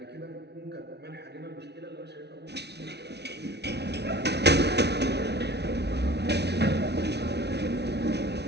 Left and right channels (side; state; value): left; late; 0.49 ms